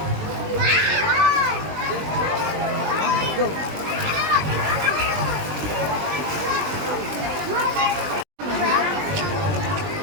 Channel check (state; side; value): late; left; 20 ms